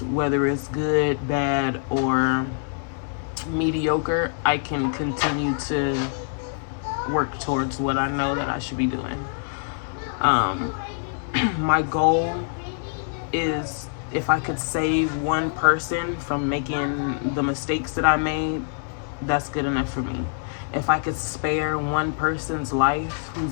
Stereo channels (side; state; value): right; silent; digital silence